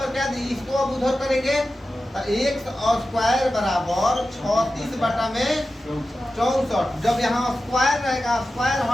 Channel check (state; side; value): normal; both; correlation 0.93